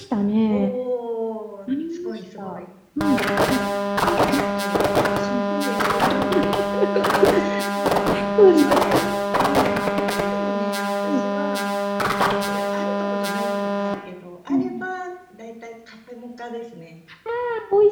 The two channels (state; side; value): identical; both; correlation 1.00